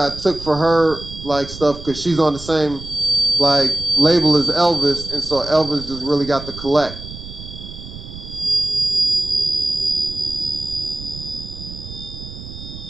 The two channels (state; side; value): noise; right; rumble, 13 dB below the sound